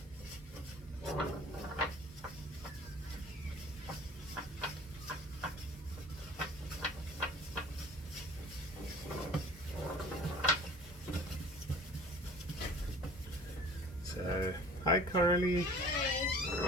So, hi Coralie.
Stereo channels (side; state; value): both; normal; correlation 0.46